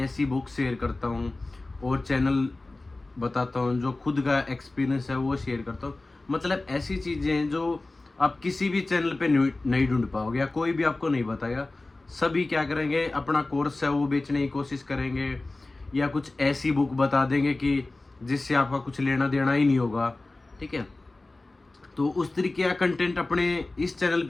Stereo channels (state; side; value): quieter; right; 3.1 dB